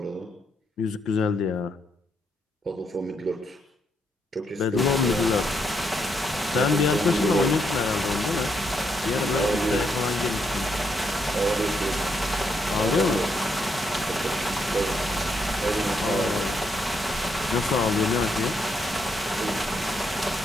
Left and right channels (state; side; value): normal; both; correlation 0.77